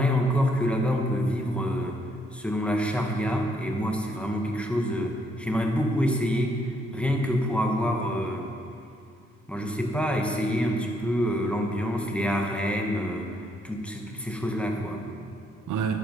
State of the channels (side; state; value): both; normal; correlation 0.72